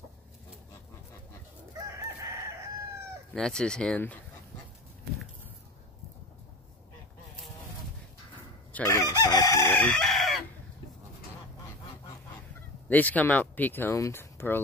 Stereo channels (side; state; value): both; normal; correlation 0.30